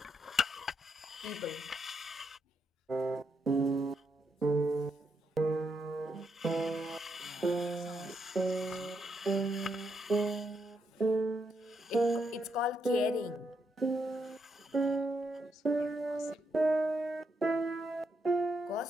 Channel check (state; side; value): normal; both; correlation 0.80